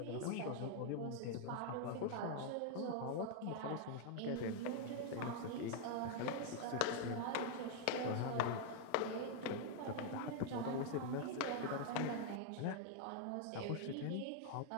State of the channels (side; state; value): both; different; correlation 0.00